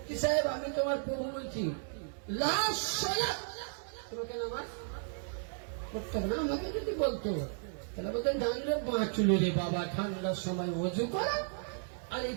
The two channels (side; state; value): left; silent; digital silence